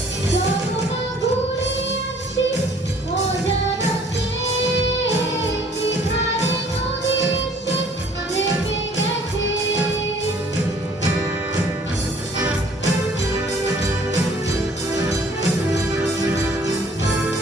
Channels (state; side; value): normal; both; correlation 0.56